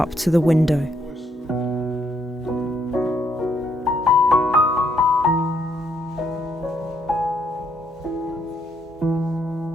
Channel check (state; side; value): normal; both; correlation 0.73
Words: to the window.